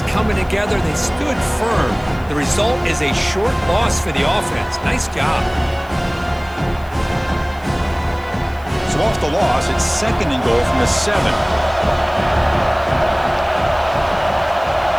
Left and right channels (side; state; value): right; noise; hiss, 27 dB below the sound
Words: coming together. They stood firm. The result is a short loss for the offense. Nice job. So off the loss, it's second and goal from the 7.